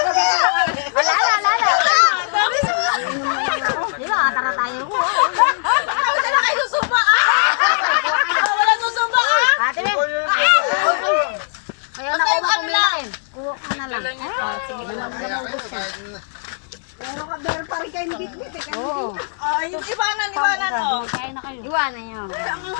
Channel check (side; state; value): right; silent; digital silence